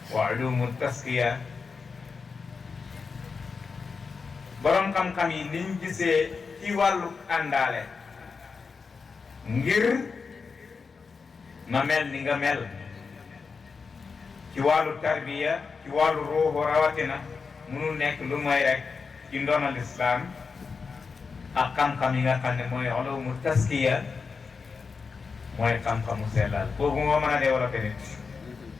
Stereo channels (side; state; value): right; quieter; 5.0 dB